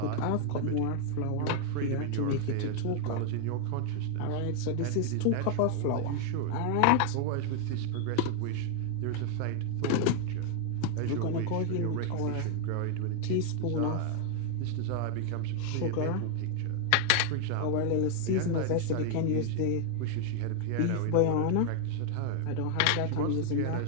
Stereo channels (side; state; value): both; different; correlation 0.00